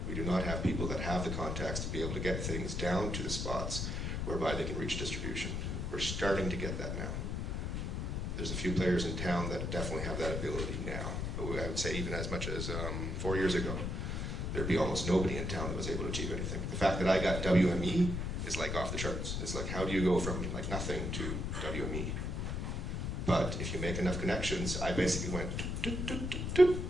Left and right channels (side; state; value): left; noise; rumble, 2 dB below the sound